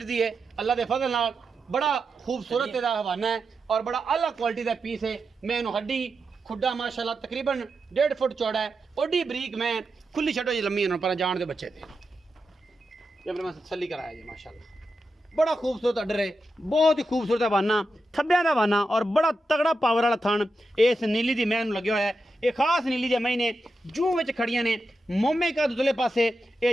है अल्लाह के फजल नाल बड़ा खूबसूरत इहदा हवाना है और बड़ा आला क्वालिटी का पीस है। मैनू हड्डी खुड्डा माशाल्लाह तकरीबन 1.5 फुट चौड़ा है ओडी बरीक मैं खुली छड्डो जी लम्मी पर जान दे बच्चे थे जब मैं तसल्ली कराया जी माशाल्लाह बड़ा खूबसूरत अडर है बहुत ही खूबसूरत हवाना थब्बियां दा हवाना और बड़ा तगड़ा पावर वाला थन इस नीली दी मैनू लगे हुआ है। ये खास नीली दे महीने जूं विच खड़ियां ने मोमे का दुदले पासे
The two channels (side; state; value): both; normal; correlation 0.88